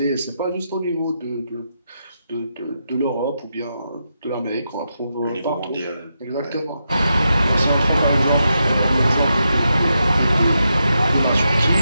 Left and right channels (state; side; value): inverted; both; correlation -0.85